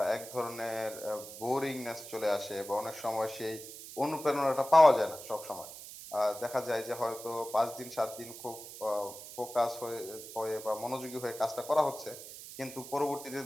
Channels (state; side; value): noise; right; hiss, 13 dB below the sound